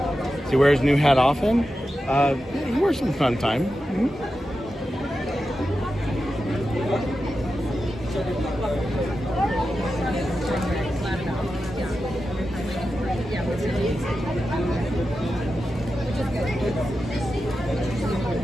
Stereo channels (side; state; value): both; normal; correlation 0.91